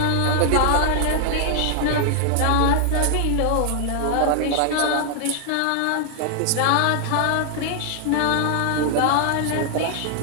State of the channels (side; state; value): both; different; correlation 0.00